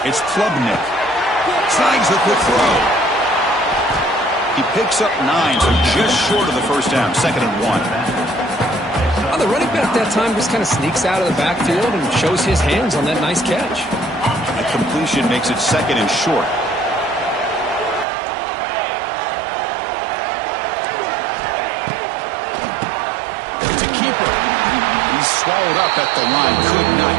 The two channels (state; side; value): drops out; left; at 18.1 s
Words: it's Klubnik. Snags the quick throw. He picks up 9, so just short of the 1st down, 2nd and 1. Oh, the running back that time just kind of sneaks out of the backfield and shows his hands on that nice catch. A completion makes it 2nd and short. It's a keeper. He's swallowed up at the line. Could not